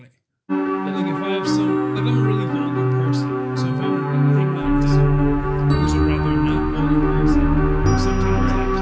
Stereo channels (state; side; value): identical; both; correlation 1.00